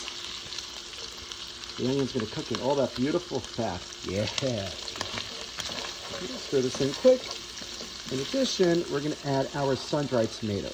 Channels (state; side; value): identical; both; correlation 1.00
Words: The onion's going to cook in all that beautiful fat. Yeah. Stir this in quick. In addition, we're going to add our sun-dried